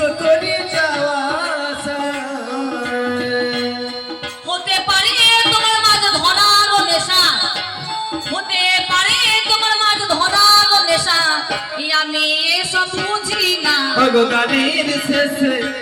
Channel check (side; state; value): both; identical; correlation 1.00